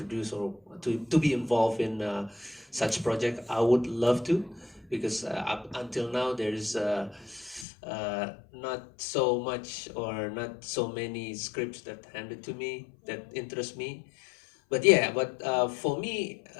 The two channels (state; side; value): drops out; right; at 7.7 s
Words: or to be involved in such project, I would love to, because up until now there is not so much or not so many scripts that handed to me that interest me. But for me,